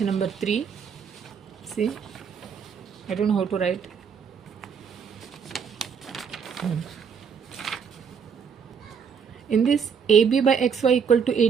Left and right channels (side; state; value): left; quieter; 6.7 dB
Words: number 3. See, I don't know how to write. In this, AB by XY equal to